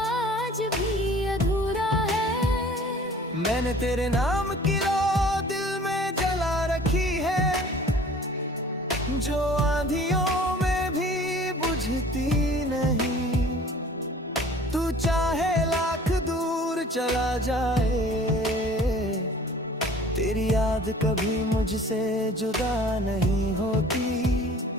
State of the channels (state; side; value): normal; both; correlation 0.49